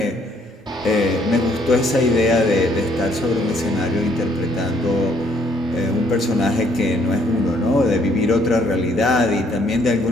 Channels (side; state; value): both; normal; correlation 0.66